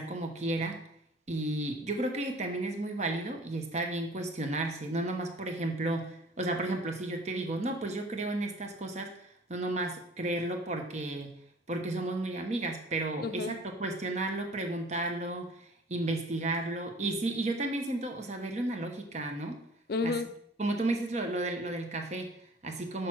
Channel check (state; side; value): normal; both; correlation 0.49